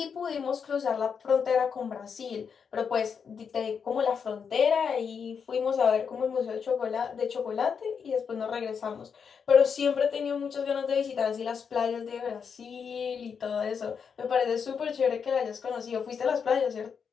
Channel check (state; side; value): quieter; right; 6.5 dB